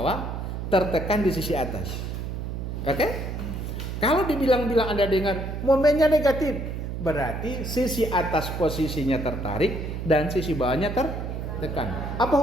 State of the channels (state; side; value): noise; right; hum, 5 dB below the sound